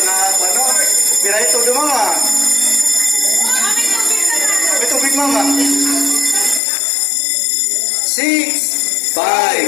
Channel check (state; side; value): drops out; right; at 6.6 s